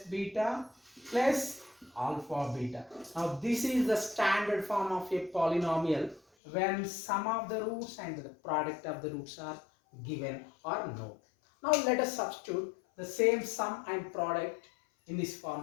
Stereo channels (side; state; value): right; drops out; at 6.2 s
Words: beta plus alpha beta. Now this is the standard form of a polynomial when sum of the roots and the product of the roots are given or known. Now let us substitute the same sum and product in this